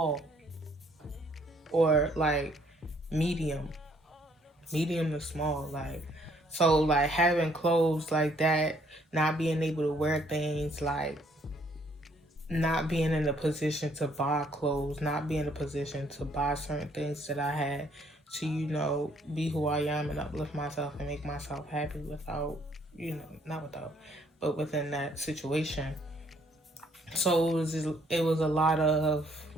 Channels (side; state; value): both; normal; correlation 0.65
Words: or like medium, medium to small. Like, so like having clothes like that, not being able to wear things, like not being in a position to buy clothes, not being in a position to buy certain things that I had to, be who I am and uplift myself and make myself happy without, not without, but within that situation. So it was a lot of